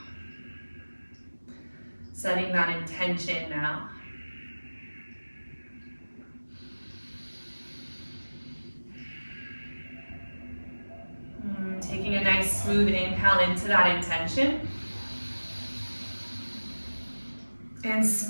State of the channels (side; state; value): both; inverted; correlation -1.00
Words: Setting that intention now. Taking a nice smooth inhale into that intention. And